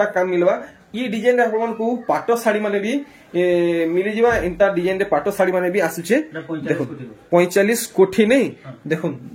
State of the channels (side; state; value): both; identical; correlation 1.00